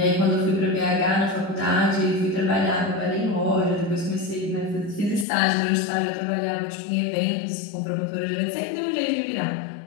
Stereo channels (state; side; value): drops out; right; at 5.2 s